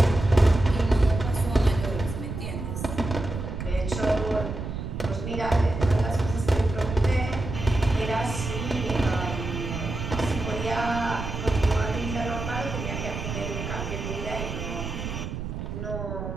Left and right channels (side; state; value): right; noise; rumble, 6 dB below the sound